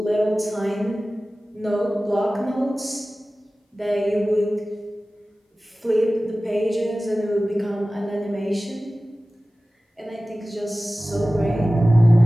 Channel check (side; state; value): both; normal; correlation 0.97